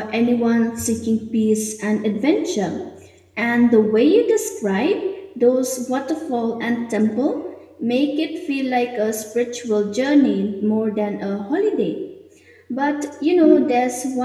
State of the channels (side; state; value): both; identical; correlation 1.00